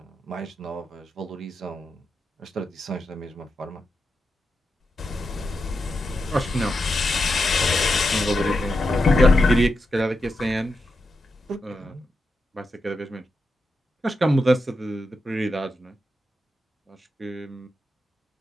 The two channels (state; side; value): normal; both; correlation 0.86